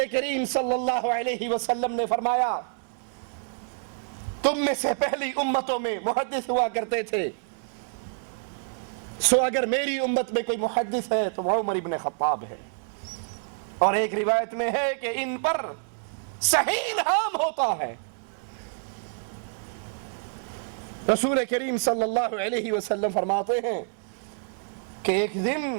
کریم صلی اللہ علیہ وسلم نے فرمایا، تم میں سے پہلی امتوں میں محدث ہوا کرتے تھے، سو اگر میری امت میں کوئی محدث ہے تو وہ عمر ابن خطاب ہے۔ اور ایک روایت میں ہے کہ ان پر صحیح الہام ہوتا ہے۔ رسول کریم صلی اللہ علیہ وسلم فرماتے ہیں کہ ایک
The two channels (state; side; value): silent; left; digital silence